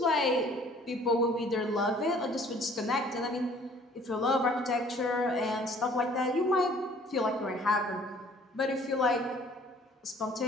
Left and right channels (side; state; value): both; normal; correlation 0.55